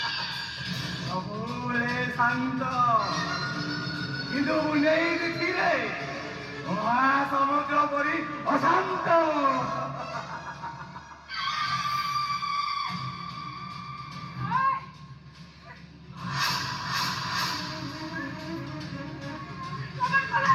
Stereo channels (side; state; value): both; identical; correlation 1.00